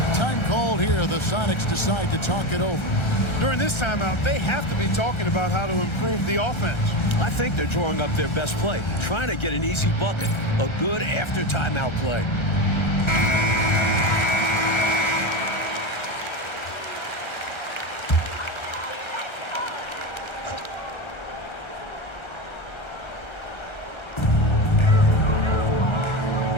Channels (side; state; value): right; late; 1.3 ms